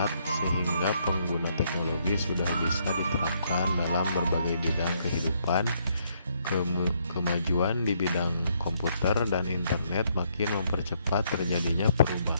sehingga pengguna teknologi sudah bisa diterapkan dalam berbagai bidang kehidupan. Kemajuan di bidang komputer dan internet makin mempercepat terjadinya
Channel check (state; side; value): inverted; both; correlation -0.72